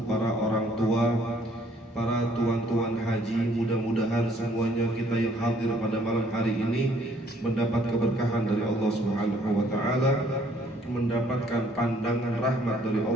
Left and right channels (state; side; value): normal; both; correlation 0.62